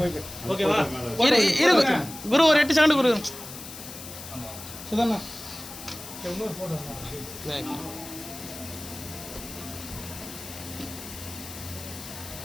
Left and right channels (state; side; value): noise; left; hiss, 12 dB below the sound